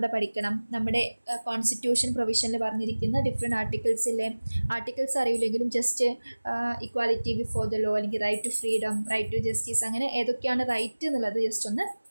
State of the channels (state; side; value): inverted; both; correlation -1.00